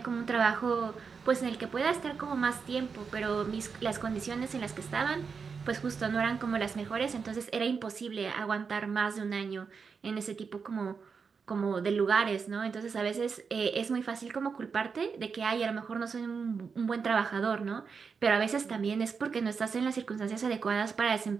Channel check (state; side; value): quieter; left; 5.6 dB